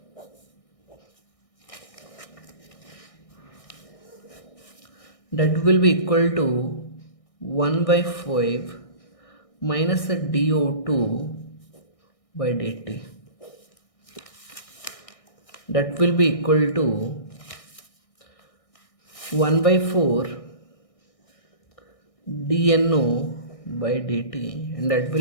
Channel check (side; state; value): right; late; 1.6 ms